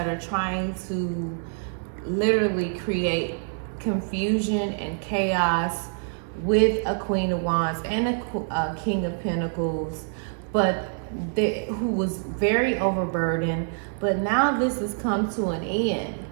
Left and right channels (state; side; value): silent; left; digital silence